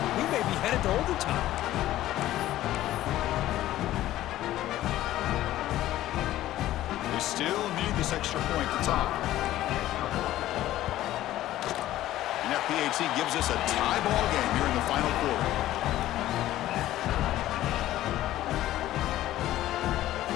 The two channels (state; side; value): quieter; right; 14.4 dB